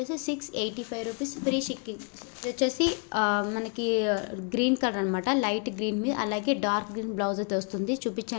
685 రూపీస్ ఫ్రీ షిప్పింగ్. వచ్చేసి మనకి గ్రీన్ కలర్ అనమాట, లైట్ గ్రీన్ మీద అలాగే డార్క్ గ్రీన్ బ్లౌజ్ అయితే వస్తుంది.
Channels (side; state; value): right; quieter; 37.1 dB